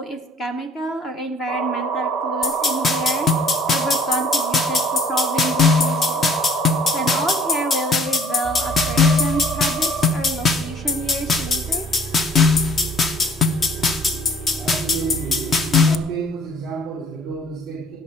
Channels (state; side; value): normal; both; correlation 0.56